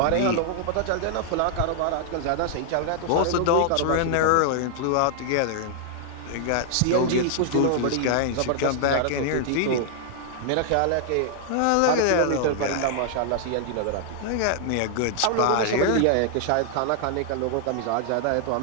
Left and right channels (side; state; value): both; different; correlation -0.01